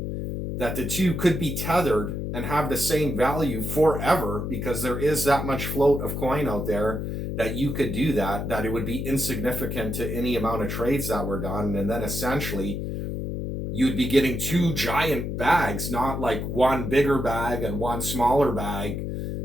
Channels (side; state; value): left; noise; hum, 4 dB below the sound